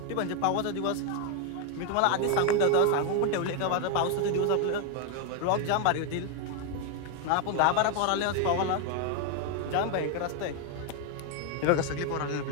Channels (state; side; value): different; both; correlation 0.01